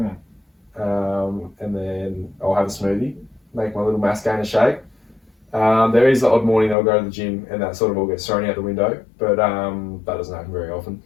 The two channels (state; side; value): drops out; right; at 6.8 s